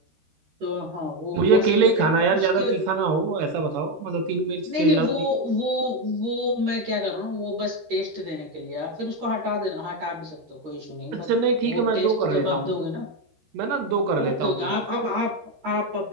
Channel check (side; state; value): left; late; 13 ms